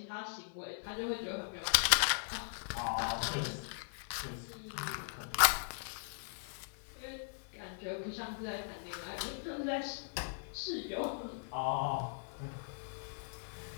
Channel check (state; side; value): silent; right; 52 dB below the other